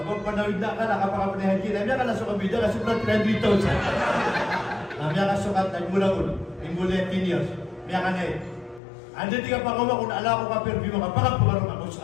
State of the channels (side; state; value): right; drops out; at 8.8 s